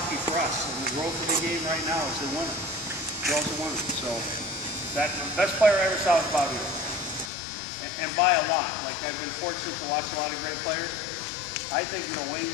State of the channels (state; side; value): drops out; right; at 7.3 s